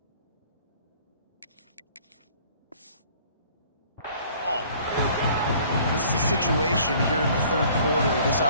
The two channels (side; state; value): both; inverted; correlation -0.54